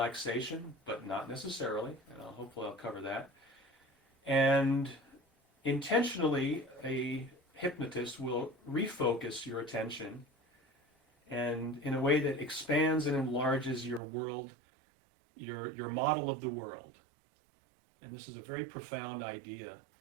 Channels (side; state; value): left; drops out; at 14.0 s